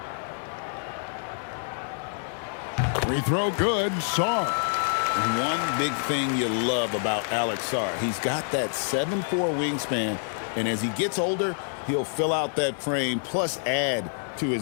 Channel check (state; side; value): silent; right; digital silence